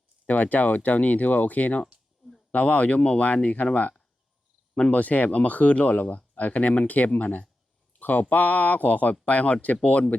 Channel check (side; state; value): both; normal; correlation 0.92